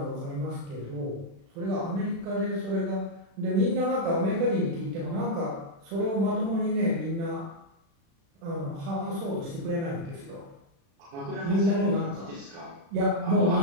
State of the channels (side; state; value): left; late; 36 ms